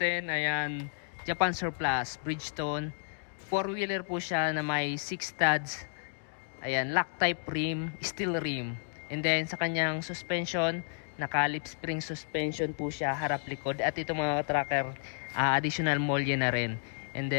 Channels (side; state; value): right; silent; 57 dB below the other